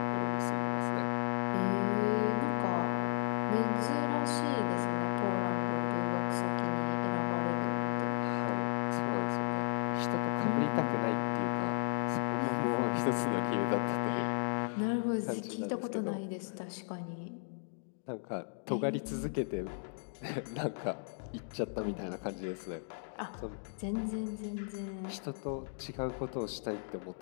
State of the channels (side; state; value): right; silent; digital silence